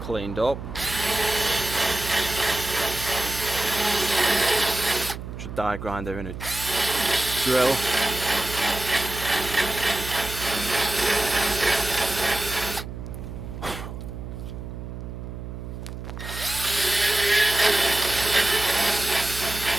cleaned up. Just a die grinder in a drill.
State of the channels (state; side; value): noise; right; hum, 9 dB below the sound